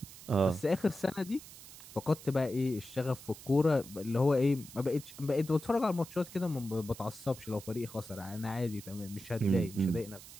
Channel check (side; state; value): right; noise; hiss, 16 dB below the sound